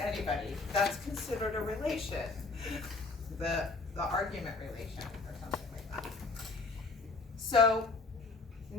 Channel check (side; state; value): right; quieter; 3.9 dB